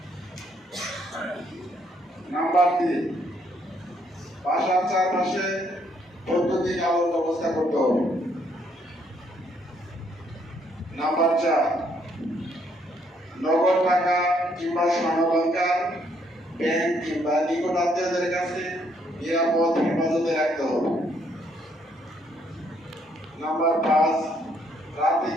নাম্বার 3, বাসার চারপাশে বৈদ্যুতিক আলোর ব্যবস্থা করতে হবে। নাম্বার 4, নগদ টাকা কিংবা স্বর্ণালংকার ব্যাংক কিংবা নিকট আত্মীয়দের কাছে নিরাপদ হেফাজতে রাখতে হবে। নাম্বার 5, রাতে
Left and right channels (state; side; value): normal; both; correlation 0.70